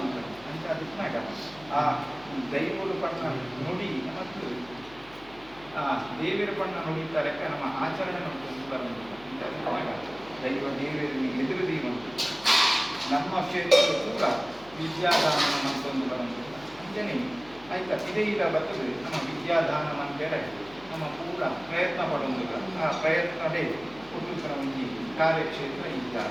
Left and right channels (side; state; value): left; noise; hum, 22 dB below the sound